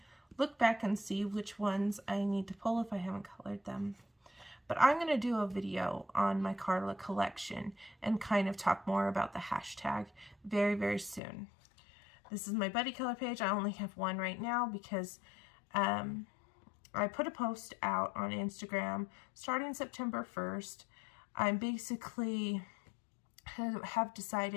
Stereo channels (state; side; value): drops out; right; at 11.2 s